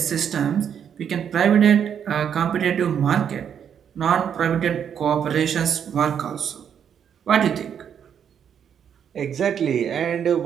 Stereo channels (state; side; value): quieter; left; 8.3 dB